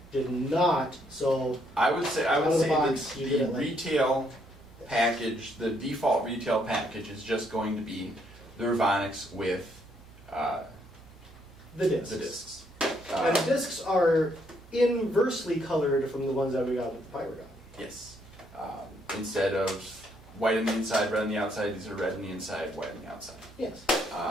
did not. So I would say the like retail package, the default retail package, is just going to be the Revonix with the discs. The discs. And the discs are inversely colored from the ones that we got with the Pyragon. Yes. Instead of white on the inside, red on the outside. These are red on the inside, white on the outside. Yes.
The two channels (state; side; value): normal; both; correlation 0.72